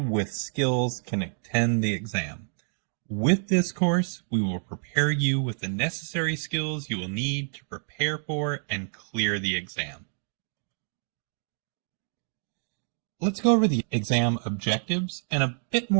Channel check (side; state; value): left; silent; digital silence